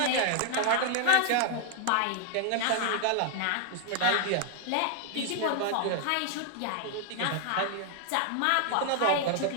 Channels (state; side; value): different; both; correlation 0.00